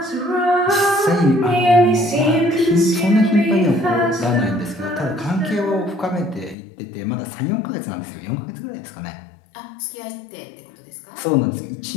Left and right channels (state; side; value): drops out; right; at 6.6 s